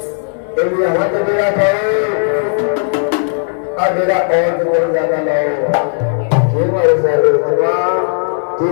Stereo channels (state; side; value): silent; right; digital silence